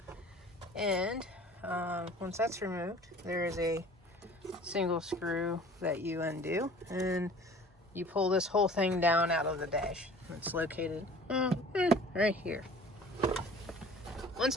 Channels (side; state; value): both; normal; correlation 0.47